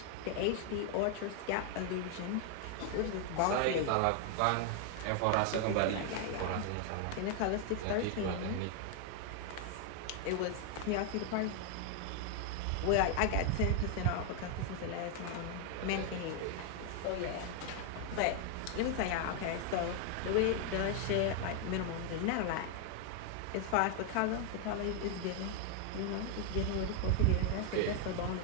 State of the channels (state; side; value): different; both; correlation 0.00